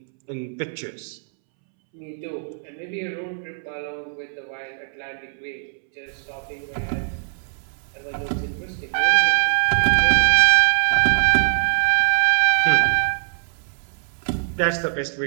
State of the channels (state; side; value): silent; left; 64 dB below the other